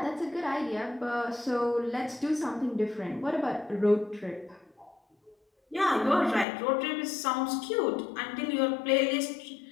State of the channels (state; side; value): drops out; right; at 6.5 s